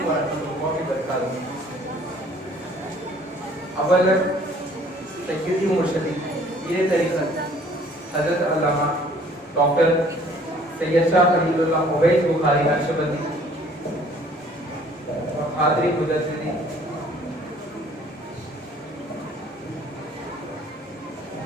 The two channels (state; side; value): normal; both; correlation 0.56